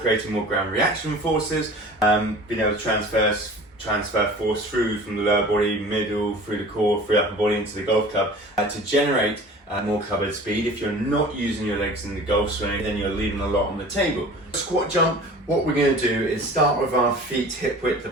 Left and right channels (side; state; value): both; normal; correlation 0.42